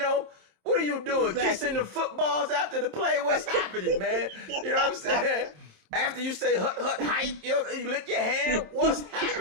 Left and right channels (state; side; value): late; left; 27 ms